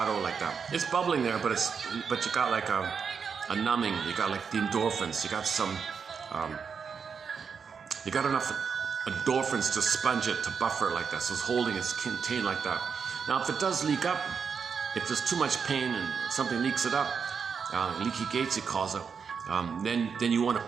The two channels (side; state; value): left; quieter; 6.2 dB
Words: like that. It's bubbling there, but you got like a numbing. You got like the endorphins. You got some. You got enough endorphins to sponge it, to buffer it like that. So it's holding, it's contained like that. Now, if it does leak up, if there's too much pain and something leaks it up, leaky gates, he calls it. Then you want to